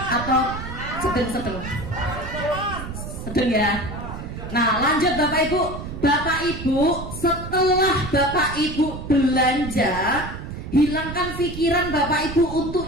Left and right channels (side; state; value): right; noise; rumble, 9 dB below the sound